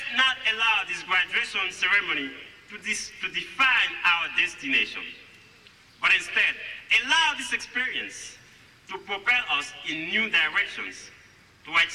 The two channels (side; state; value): both; identical; correlation 1.00